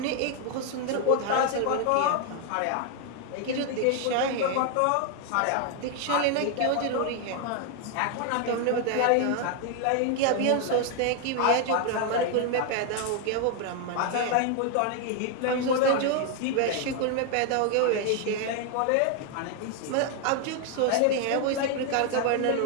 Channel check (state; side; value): different; both; correlation 0.00